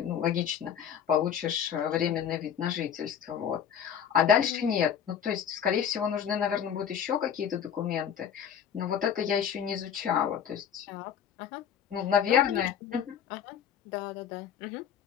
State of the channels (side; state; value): right; quieter; 8.6 dB